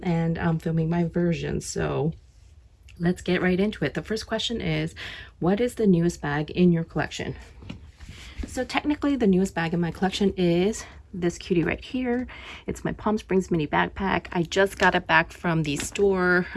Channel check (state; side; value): identical; both; correlation 1.00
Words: I'm filming my version. So let's get right into it. The first question is, what is the newest bag in your collection? So technically the newest bag in my collection is this cutie right here. It's my Palm Springs mini backpack. I just got it back from the store